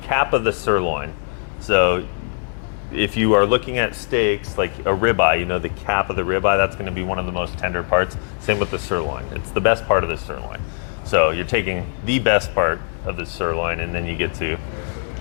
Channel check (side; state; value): right; silent; 65 dB below the other